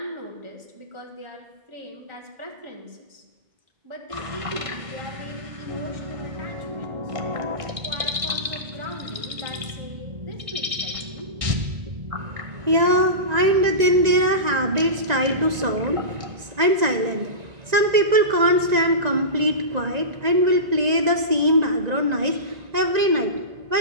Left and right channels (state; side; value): late; left; 1.9 ms